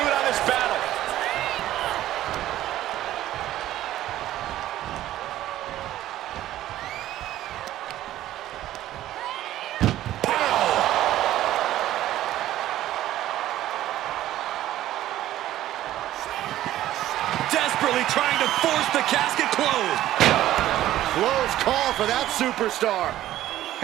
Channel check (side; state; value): left; quieter; 13.7 dB